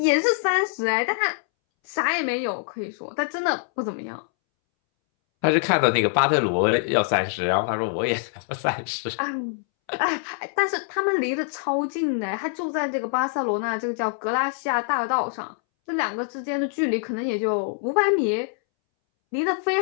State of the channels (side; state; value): right; silent; 62 dB below the other